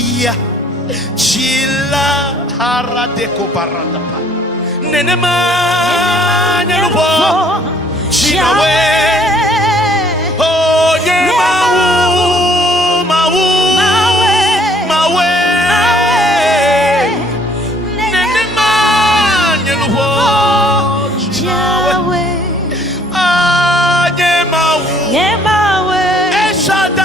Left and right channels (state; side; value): normal; both; correlation 0.61